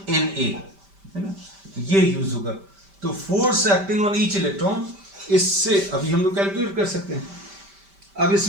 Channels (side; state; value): left; late; 5.1 ms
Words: N A, है ना, ये यूज होगा। तो force acting on each electron, इससे अभी हम लोग कैलकुलेट कर सकते हैं। अब